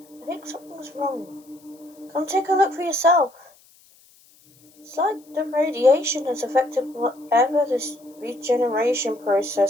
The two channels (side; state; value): left; noise; hiss, 29 dB below the sound